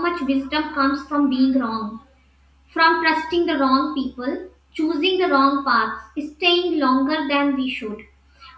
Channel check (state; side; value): identical; both; correlation 1.00